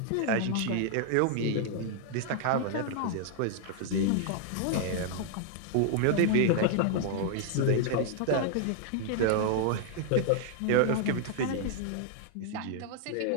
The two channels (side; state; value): both; different; correlation -0.01